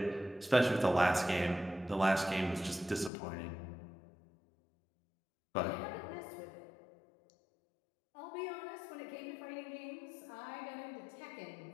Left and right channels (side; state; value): right; drops out; at 3.1 s